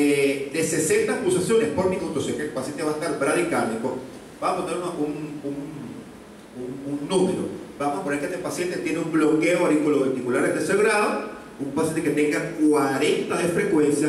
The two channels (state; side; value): identical; both; correlation 1.00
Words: 60 pulsaciones por minuto, sé que el paciente va a estar bradicárdico, vamos a poner un número. Vamos a poner que este paciente tiene un bloqueo auriculoventricular de tercer grado, un paciente que tenga 40 de